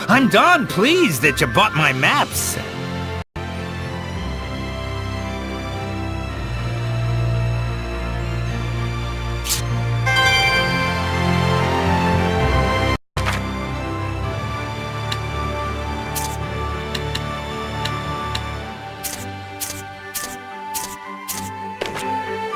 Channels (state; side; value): identical; both; correlation 1.00